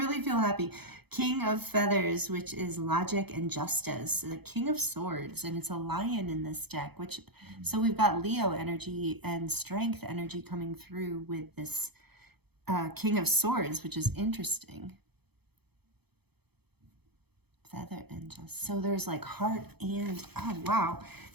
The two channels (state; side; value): late; left; 0.97 ms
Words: feel happy. King of Feathers, which is logic and justice. The King of Swords, and it's a lion in this deck, which, so we've got Leo energy and strength energy coming through with this King of Swords, which is interesting. Feather and justice. So there's like heart and, oh, wow.